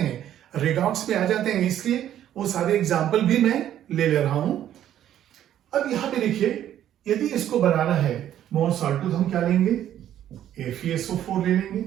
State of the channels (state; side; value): quieter; left; 11.3 dB